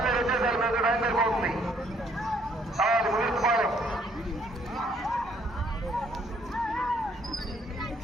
వచ్చేసారు. మీద టైం సరిపోతుంది. కావాలి ముదిరిపాలెం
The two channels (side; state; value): both; normal; correlation 0.66